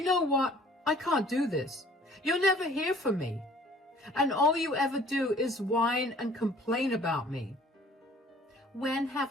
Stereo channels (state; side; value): normal; both; correlation 0.54